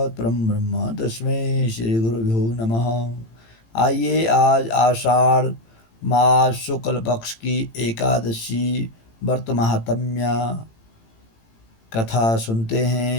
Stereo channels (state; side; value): late; right; 18 ms